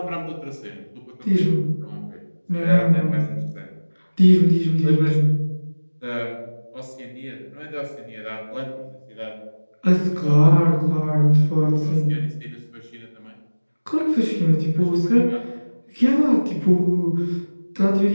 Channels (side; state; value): both; inverted; correlation -1.00